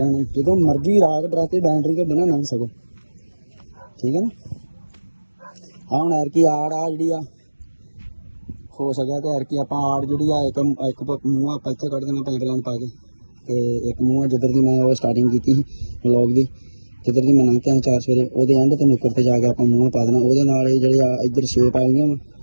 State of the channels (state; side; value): inverted; both; correlation -1.00